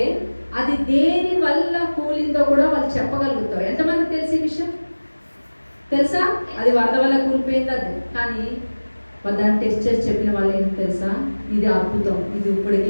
అది దేని వల్ల కూలిందో కూడా వాళ్ళు చెప్పగలుగుతారు. ఎంతమంది తెలిసి విషయం తెలుసా? అది వరద వల్ల కూలిపోయింది అది. కానీ దాన్ని టెస్ట్ చేసి చెప్పిన వాళ్ళు ఏంటి తెలుసా? ఇది అద్భుతం, ఇది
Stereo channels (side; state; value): both; inverted; correlation -1.00